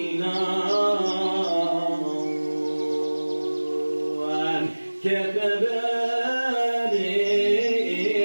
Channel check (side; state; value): both; inverted; correlation -1.00